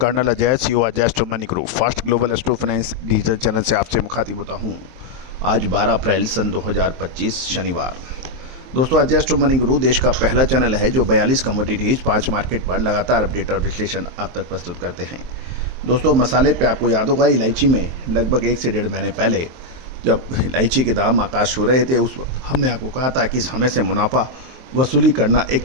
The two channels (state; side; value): late; left; 23 ms